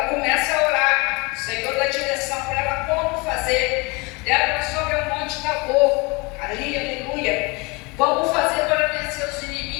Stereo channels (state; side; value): quieter; right; 27.3 dB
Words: começa a orar, o Senhor dá direção para ela como fazer. Débora sobe ao monte Tabor, ali, aleluia, como fazer para vencer os